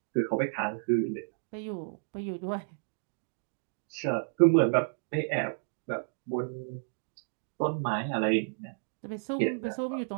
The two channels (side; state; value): left; silent; digital silence